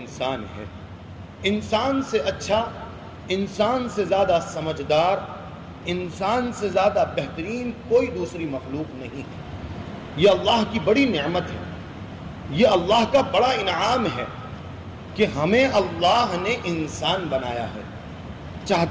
ہے۔ انسان سے اچھا، انسان سے زیادہ سمجھدار، انسان سے زیادہ بہترین کوئی دوسری مخلوق نہیں ہے۔ یہ اللہ کی بڑی نعمت ہے، یہ اللہ کا بڑا انعام ہے کہ ہمیں اللہ نے انسان بنایا ہے۔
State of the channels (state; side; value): identical; both; correlation 1.00